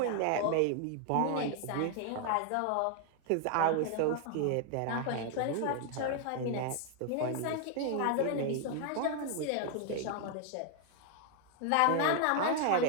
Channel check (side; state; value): both; different; correlation 0.00